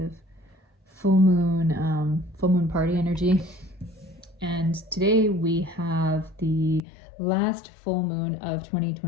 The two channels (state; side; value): drops out; right; at 6.8 s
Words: full moon party energy. And today we have the last full moon of